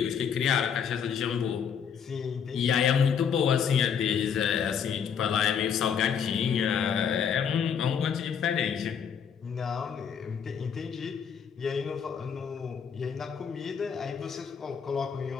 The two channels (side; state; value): right; quieter; 7.4 dB